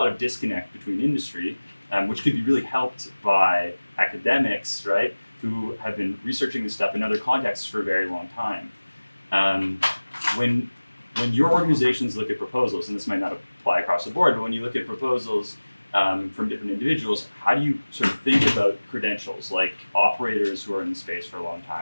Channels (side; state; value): both; inverted; correlation -1.00